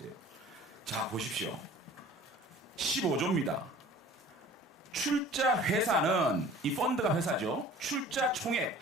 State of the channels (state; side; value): normal; both; correlation 0.46